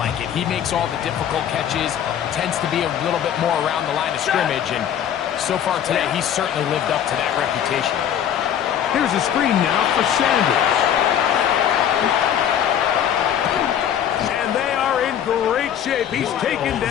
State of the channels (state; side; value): quieter; right; 9.6 dB